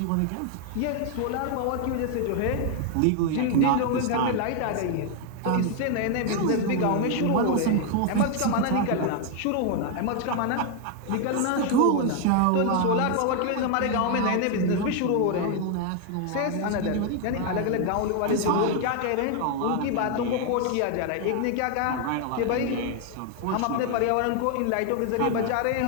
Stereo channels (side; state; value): both; different; correlation 0.00